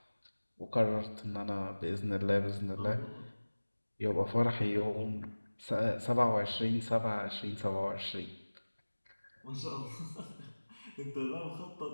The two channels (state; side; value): inverted; both; correlation -1.00